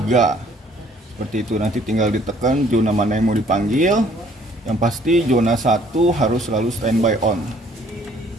Seperti itu, nanti tinggal ditekan zona mana yang mau dipanggil. Yang pasti zona 1 harus selalu standby on.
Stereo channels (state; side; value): normal; both; correlation 0.60